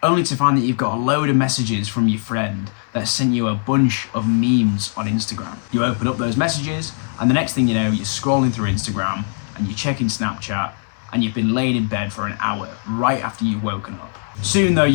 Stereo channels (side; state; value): right; silent; 61 dB below the other